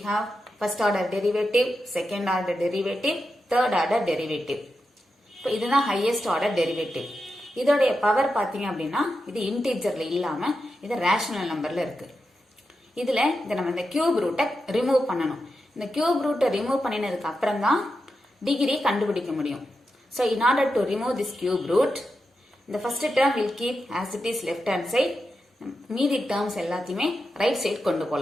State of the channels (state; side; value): normal; both; correlation 0.88